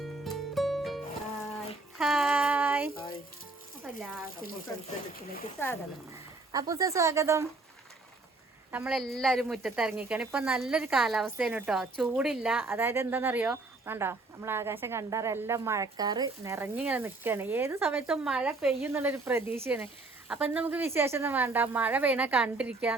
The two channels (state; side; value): quieter; left; 3.3 dB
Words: അപ്പൂസ സ്വാഗതം. നമ്മളെല്ലാവരും മുറ്റത്തിറങ്ങിക്കാണ്. ഇപ്പം നല്ലൊരു കാലാവസ്ഥയാണ് കേട്ടോ, ചൂടില്ല. അതായത് എന്താണെന്നറിയോ, വേണ്ടോ നമ്മൾ ആകാശം കണ്ടാറ് എല്ലാം മഴക്കാറ് നിറഞ്ഞിങ്ങനെ നിൽക്കുകയാണ്. ഏത് സമയത്തും മഴ പെയ്യും എന്നുള്ളൊരു പ്രതീക്ഷയാണ്. അപ്പം ഇന്ന് നമുക്ക് വിശേഷമൊന്നും വേണ്ട, മഴ പെയ്യണ കണ്ടിരിക്കുക,